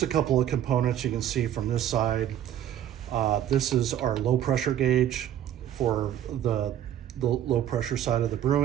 a couple of components you can see from this side. This is our low pressure gauge for the low pressure side of the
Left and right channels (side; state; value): left; quieter; 10.9 dB